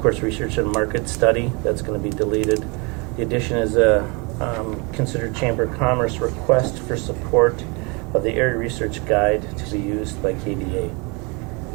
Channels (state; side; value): quieter; left; 30.0 dB